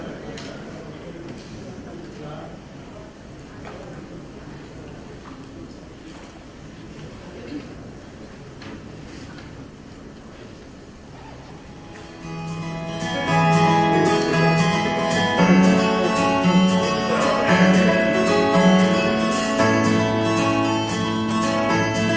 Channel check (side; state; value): both; identical; correlation 1.00